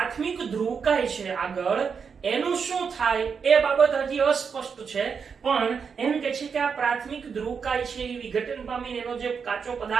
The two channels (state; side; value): quieter; left; 6.1 dB